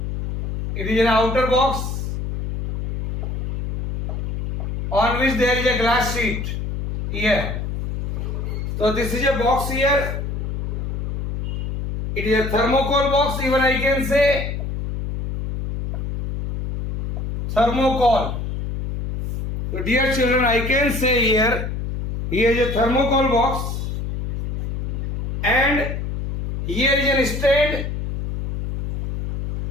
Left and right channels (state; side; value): noise; left; hum, 3 dB below the sound